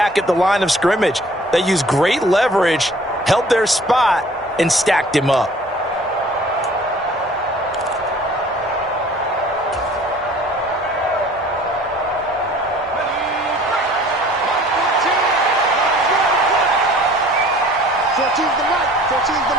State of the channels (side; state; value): both; normal; correlation 0.51